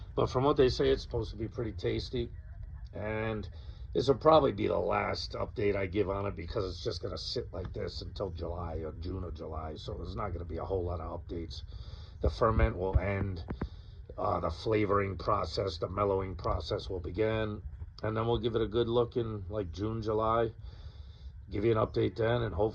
But from what they say, it's supposed to be pretty tasty. And This will probably be the last update I give on it because it's just going to sit like this until July or June or July. So there's not going to be a whole lot of updates. The ferment will end. The flavoring process, the mellowing process will begin. And then we'll give it a good look in like June, July. Give you an update then, and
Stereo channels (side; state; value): both; identical; correlation 1.00